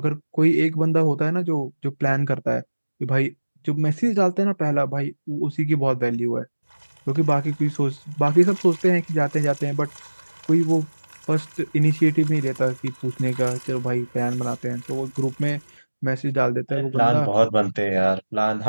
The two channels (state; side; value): inverted; both; correlation -1.00